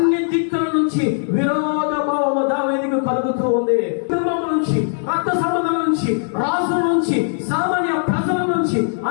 దిక్కుల నుంచి విరోధభావము దావీదుకు కలుగుతూ ఉంది. కుటుంబం నుంచి, రక్త సంబంధం నుంచి, రాజుల నుంచి, సామాన్య ప్రజల నుంచి,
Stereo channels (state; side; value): silent; right; digital silence